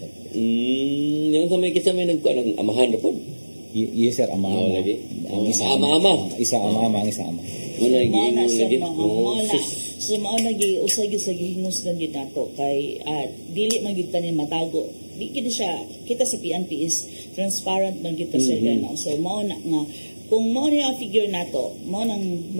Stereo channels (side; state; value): both; inverted; correlation -1.00